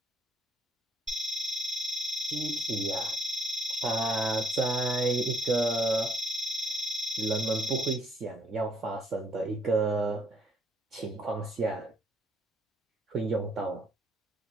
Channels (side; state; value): both; normal; correlation 0.68